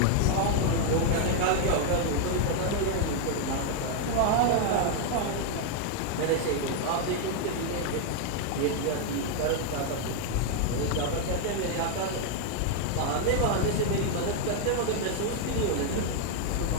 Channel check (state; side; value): different; both; correlation 0.00